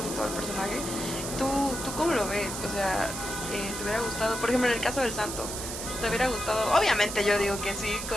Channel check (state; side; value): noise; right; hiss, 6 dB below the sound